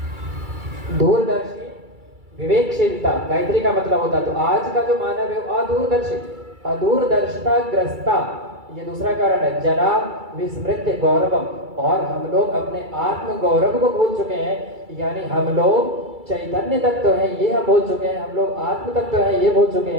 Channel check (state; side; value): late; left; 2.3 ms